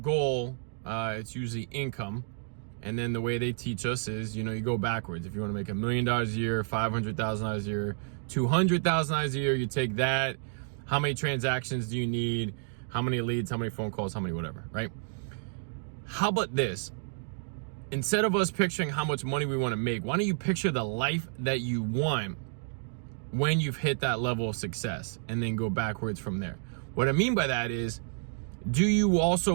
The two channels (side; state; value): left; silent; digital silence